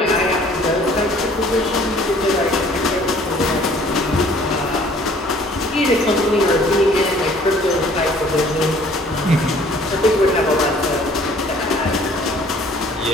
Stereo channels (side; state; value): both; normal; correlation 0.55